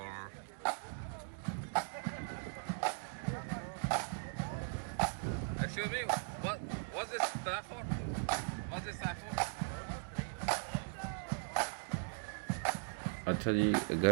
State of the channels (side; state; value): left; silent; digital silence